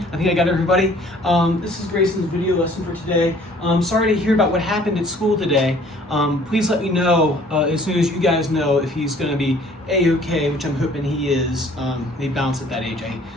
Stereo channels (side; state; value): both; normal; correlation 0.55